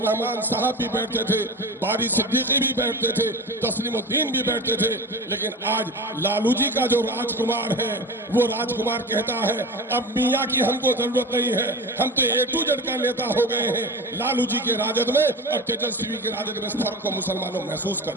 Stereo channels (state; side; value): normal; both; correlation 0.31